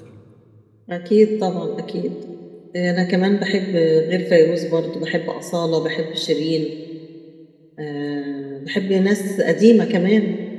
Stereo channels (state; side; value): identical; both; correlation 1.00